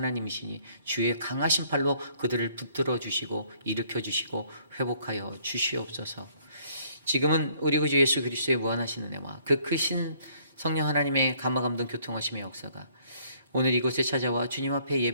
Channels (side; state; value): both; inverted; correlation -0.63